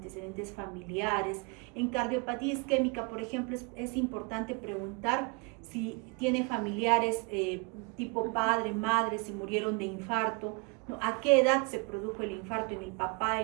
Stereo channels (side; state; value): left; quieter; 31.0 dB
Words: familiares. En cardiopatía isquémica, por ejemplo, es importante preguntar si tiene familiares tipo padre, madre, si murieron de infarto, ¿no? A qué edad se produjo el infarto en el papá,